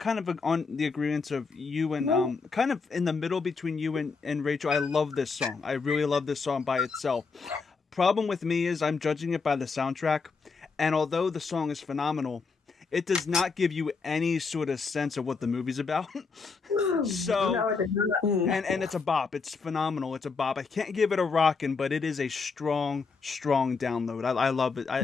of on the agreement of you and kind of in the middle between you and Rachel. I love this song. I really love this song by itself. Problem with me is I'm judging it by the soundtrack, and although the song is phenomenal, it does not give you any sort of sense of what the movie's about. So, and it's a bop. It's phenomenal. It's a bop. I can't give it a rockin', but it is a strong download. I love it.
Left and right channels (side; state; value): right; quieter; 4.7 dB